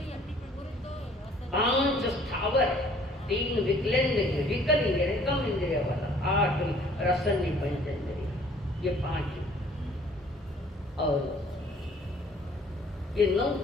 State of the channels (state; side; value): normal; both; correlation 0.56